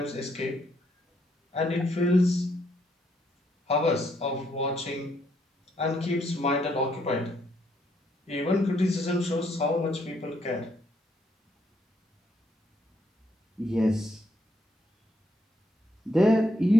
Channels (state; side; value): normal; both; correlation 0.73